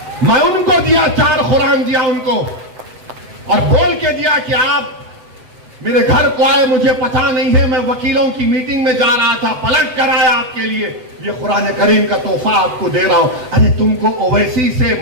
मैं उनको दिया, 4 कुरान दिया उनको और बोल के दिया कि आप मेरे घर को आए, मुझे पता नहीं है, मैं वकीलों की मीटिंग में जा रहा था, पलट कर आया आपके लिए, ये कुरान करीम का तोहफा आपको दे रहा हूं। अरे तुमको ओवैसी से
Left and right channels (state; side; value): late; left; 7.9 ms